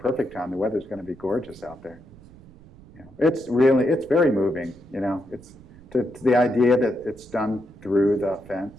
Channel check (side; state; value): right; noise; rumble, 22 dB below the sound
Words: time. The weather's going to be gorgeous out there. It's very moving. It's the idea that it's done through the